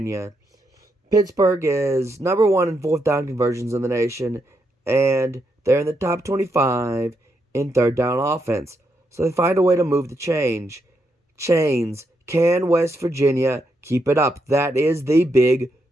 Pittsburgh is number one in fourth down conversions in the nation, and they're in the top 25 in third down offense. So they find a way to move the chains. Can West Virginia keep it up? That is the big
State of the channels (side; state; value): both; normal; correlation 0.80